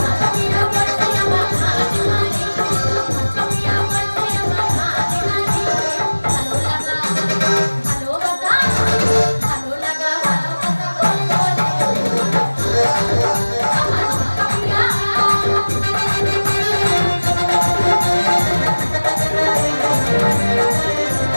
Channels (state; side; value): inverted; both; correlation -1.00